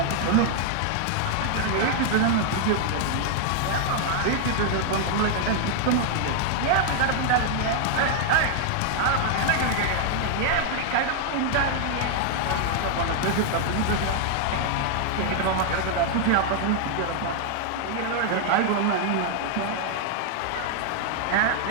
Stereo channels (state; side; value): different; both; correlation 0.00